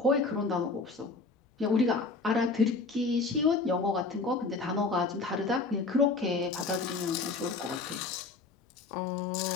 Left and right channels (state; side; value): quieter; right; 3.9 dB